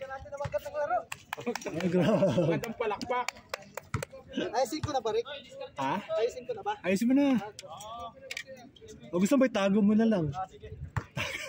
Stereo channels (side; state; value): both; identical; correlation 1.00